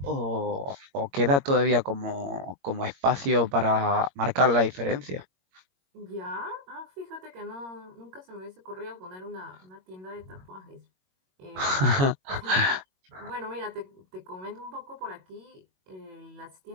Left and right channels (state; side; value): late; left; 22 ms